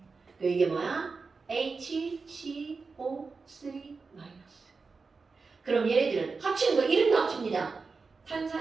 이게 뭐야? HCO3 마이너스. 그럼 얘네들은 합치는 거 이름도 합칩니다.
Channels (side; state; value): left; quieter; 4.5 dB